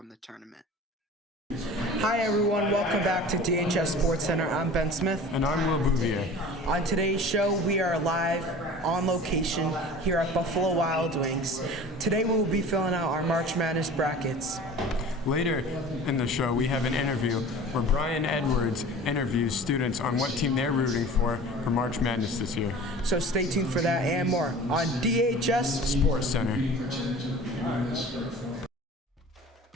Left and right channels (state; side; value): normal; both; correlation 0.41